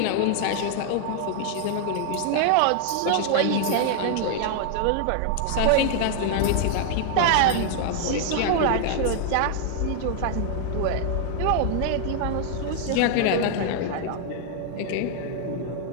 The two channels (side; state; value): both; different; correlation 0.00